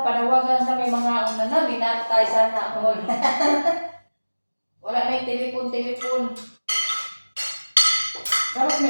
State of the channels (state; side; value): inverted; both; correlation -1.00